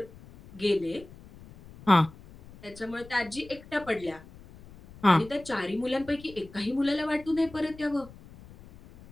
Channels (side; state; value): left; noise; rumble, 20 dB below the sound